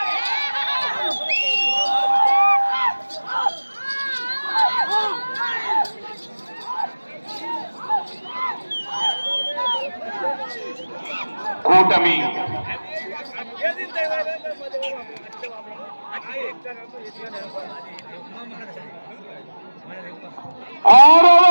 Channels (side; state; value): both; inverted; correlation -1.00